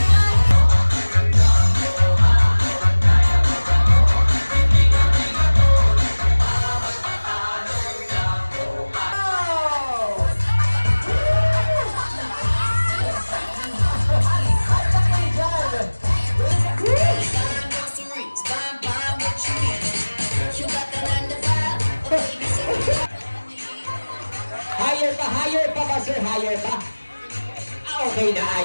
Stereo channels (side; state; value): both; inverted; correlation -1.00